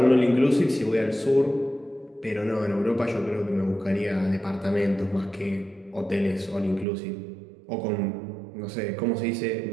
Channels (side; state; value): left; drops out; at 6.9 s